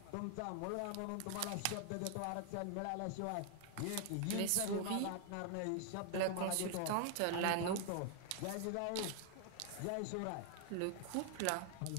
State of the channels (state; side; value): different; both; correlation 0.00